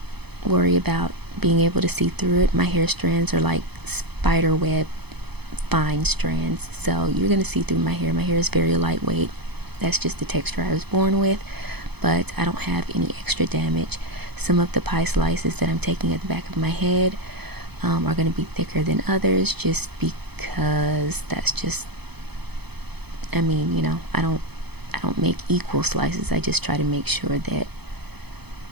worry about being able to see through it. My hair strands are like spider web fine strands, so you're going to see through my hair. My hair is very lightweight. That's just the texture I was born with, but I don't have any extra damage. Some of the pie slices that I'm taking at the back of my head are going to be thicker than others, just because that's just, I mean, you know, I don't make equal slices. I just try to make sure that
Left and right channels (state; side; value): late; left; 0.98 ms